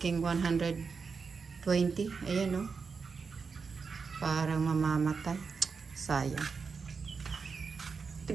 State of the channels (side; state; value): left; quieter; 5.2 dB